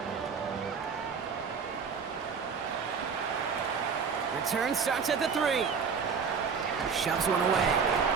Return starts at the 3. Shoves one away.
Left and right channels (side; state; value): left; quieter; 6.0 dB